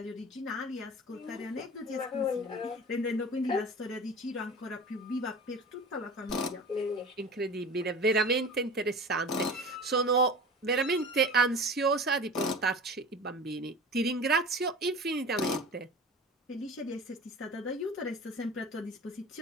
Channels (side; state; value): both; normal; correlation 0.36